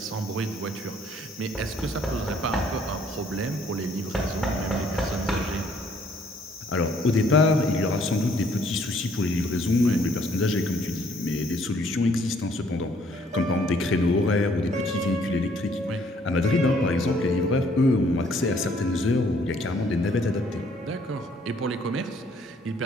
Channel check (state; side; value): normal; both; correlation 0.63